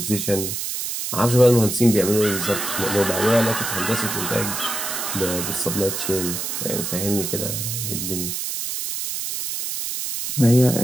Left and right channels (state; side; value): noise; right; hiss, 4 dB below the sound